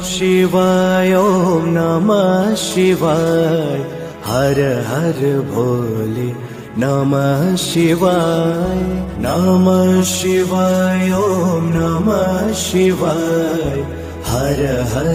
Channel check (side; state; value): both; identical; correlation 1.00